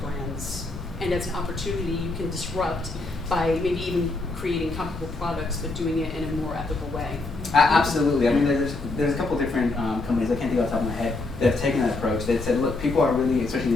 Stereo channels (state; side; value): quieter; right; 3.3 dB